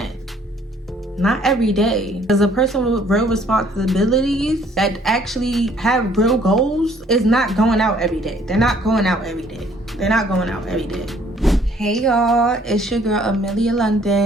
Not every day. As a person with real responsibilities that actually have real goals is not going out every day. They're not going out every day. They're not going out every day. Hey y'all, it's your girl Amelia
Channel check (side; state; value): both; normal; correlation 0.61